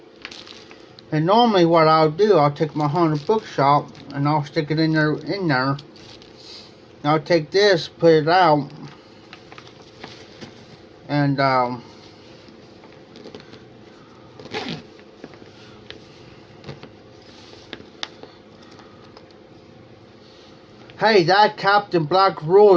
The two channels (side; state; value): both; identical; correlation 1.00